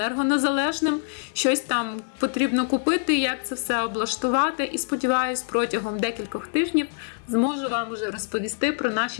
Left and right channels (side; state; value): right; silent; 62 dB below the other